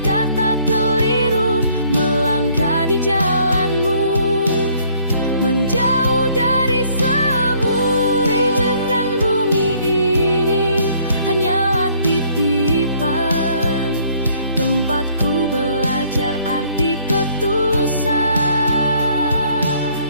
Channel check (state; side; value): inverted; both; correlation -0.62